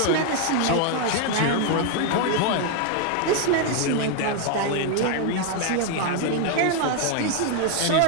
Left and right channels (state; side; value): different; both; correlation 0.01